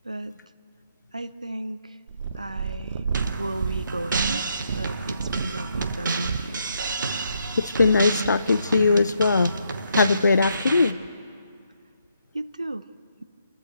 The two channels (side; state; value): both; inverted; correlation -0.76